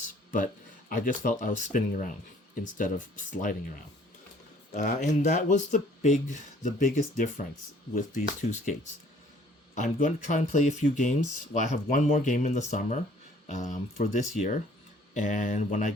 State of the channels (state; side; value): normal; both; correlation 0.57